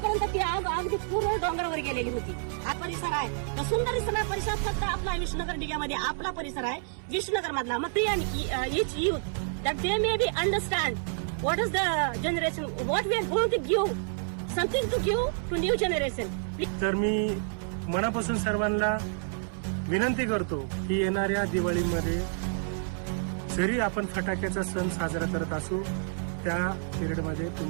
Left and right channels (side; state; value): left; silent; 59 dB below the other